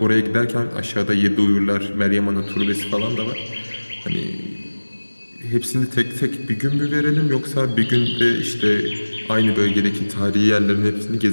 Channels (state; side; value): inverted; both; correlation -1.00